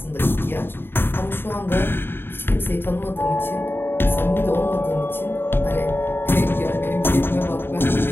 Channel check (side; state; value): right; late; 0.10 ms